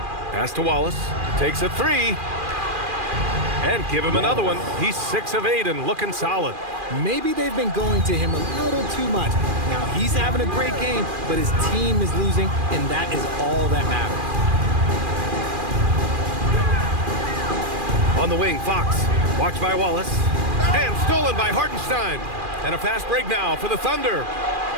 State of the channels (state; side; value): late; left; 2.4 ms